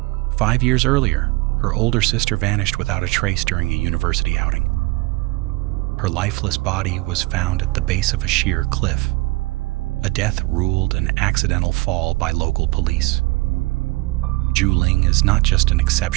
5 years earlier, her older sister vanished without a trace during a university outing. Her lifeless body was found at the base of a sheer cliff, a death ruled an accidental fall by local police. Zhu Ling is not just an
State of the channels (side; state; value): left; quieter; 22.9 dB